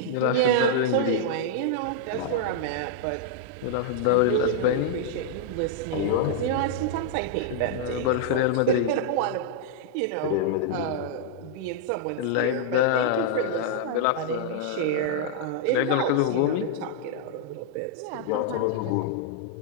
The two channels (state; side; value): different; both; correlation -0.01